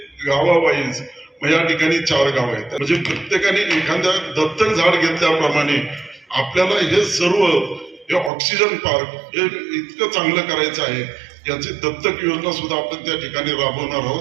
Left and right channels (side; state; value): left; drops out; at 8.3 s